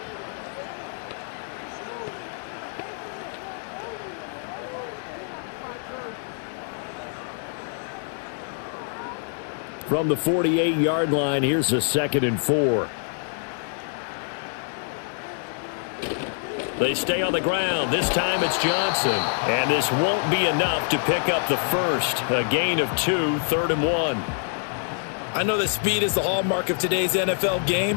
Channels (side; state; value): right; silent; digital silence